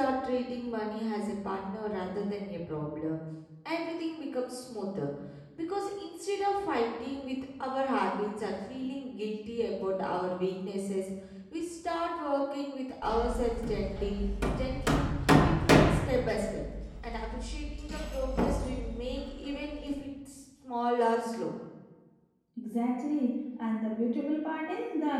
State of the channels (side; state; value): both; identical; correlation 1.00